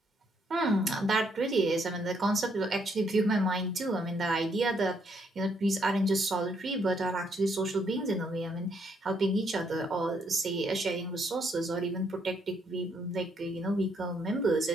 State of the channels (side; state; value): both; normal; correlation 0.72